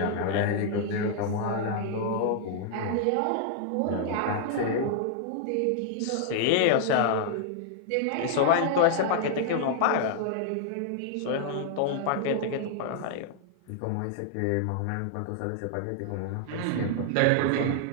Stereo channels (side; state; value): both; different; correlation -0.01